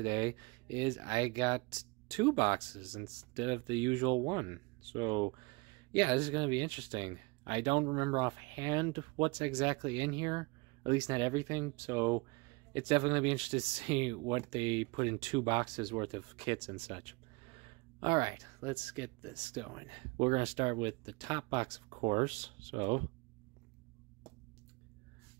is I got 2 boxes instead of the usual one. So yeah, this is going to be interesting. I don't remember offhand what's exactly in here, at least not everything, so it's definitely going to be interesting to see what they put in 2 boxes worth of kits and such. Alright, let's get this going. We're going to start with the top box, of course. So,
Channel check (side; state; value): left; quieter; 26.8 dB